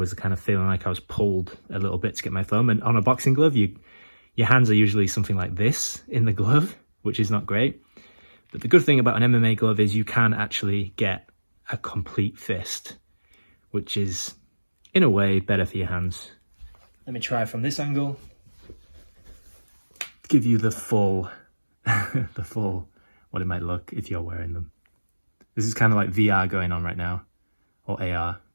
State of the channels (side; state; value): both; inverted; correlation -1.00